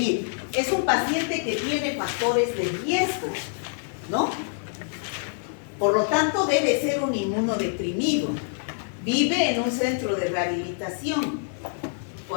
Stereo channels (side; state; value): right; silent; 61 dB below the other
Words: Es un paciente que tiene factores de riesgo, ¿no? Por lo tanto, debe ser un inmunodeprimido. Vive en un centro de rehabilitación.